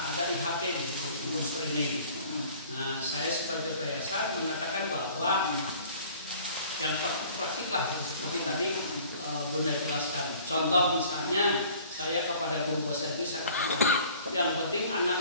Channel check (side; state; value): both; inverted; correlation -0.51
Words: IHT di Kursus Training. Nah, saya sebagai yayasan mengatakan bahwa yang praktik lah seperti tadi Bunda jelaskan. Contoh misalnya saya kepada guru bahasa Inggris saya katakan yang penting